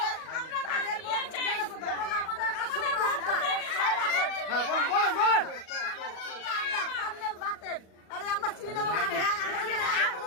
হ্যাঁ বলেন বলেন।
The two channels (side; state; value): right; late; 37 ms